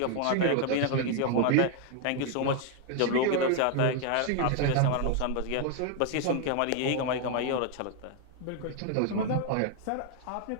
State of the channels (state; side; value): different; both; correlation 0.01